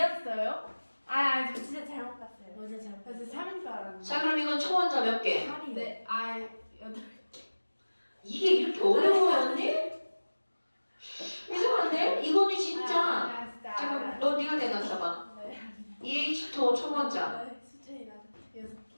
저 진짜 잘못 봤어요. 어제 잘못 저 봤어요. 3인 줄 알았는데. 자, 그럼 이건 초원자 몇 개? 8이요. 네, 8. 이게 이렇게 어려워였니? 이상한데? 이거는 진짜. 진짜. 잠깐, 너 네가 대답해봐. 네. EH2O 초원자 수준이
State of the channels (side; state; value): both; inverted; correlation -1.00